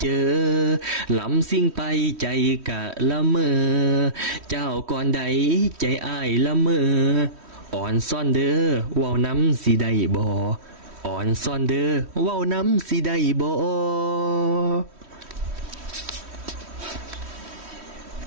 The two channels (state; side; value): late; left; 3.1 ms